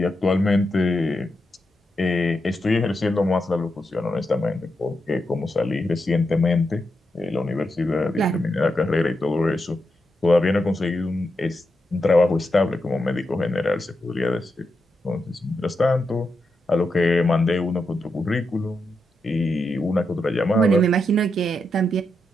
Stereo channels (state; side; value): normal; both; correlation 0.85